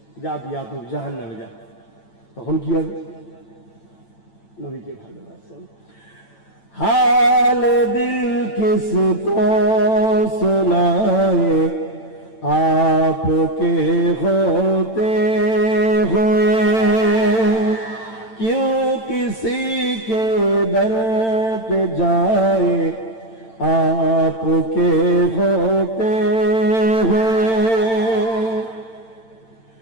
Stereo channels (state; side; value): late; right; 9.0 ms